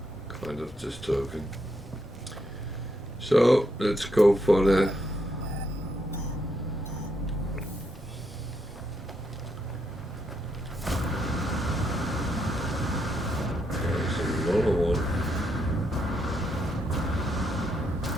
kind of disturbing. So let's go for the there's another one.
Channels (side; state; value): both; normal; correlation 0.78